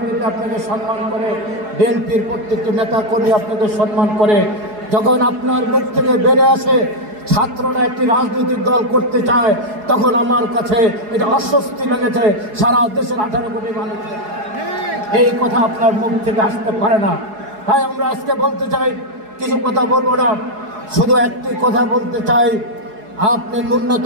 আপনাকে সম্মান করে, বিএনপির প্রত্যেকটি নেতা কর্মী আপনাকে সম্মান করে। যখন আপনার মুখ থেকে বেড়ে আসে ছাত্ররা একটি রাজনৈতিক দল করতে চায়, তখন আমার কাছে এটা অস্বস্তি লেগেছে। সারা দেশের 18 কোটি মানুষের এই কথা আপনার মুখ থেকে আসতে পারে না। তাই আমরা আজকে বলতে চাই, কিছু কথা বলবো না, শুধু একটি কথা বলতে চাই। আপনি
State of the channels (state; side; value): late; left; 4.8 ms